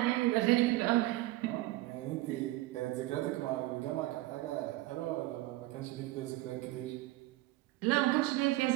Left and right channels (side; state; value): left; quieter; 18.0 dB